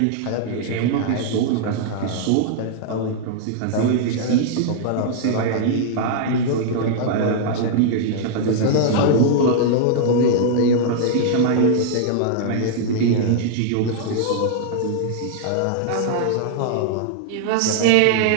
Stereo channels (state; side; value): different; both; correlation -0.01